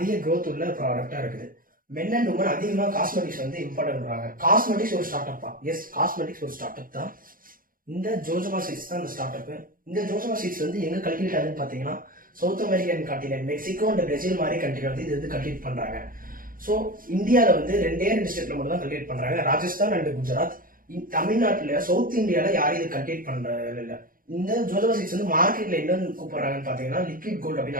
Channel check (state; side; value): late; left; 0.41 ms